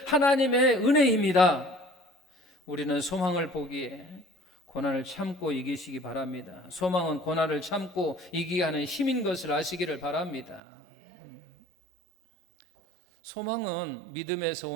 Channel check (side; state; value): left; drops out; at 10.6 s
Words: 하나님의 은혜입니다. 우리는 소망을 보기에 고난을 참고 이기시기 바랍니다. 소망은 고난을 참고 이기게 하는 힘인 것을 아시기를 바랍니다. 소망은 믿음에서